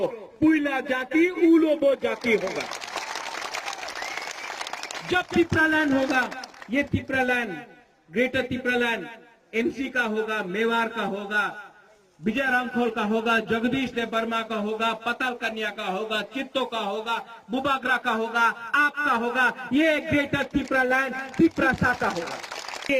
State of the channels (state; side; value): identical; both; correlation 1.00